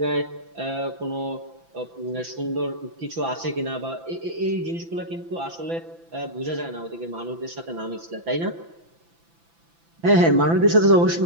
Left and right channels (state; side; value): late; left; 5.9 ms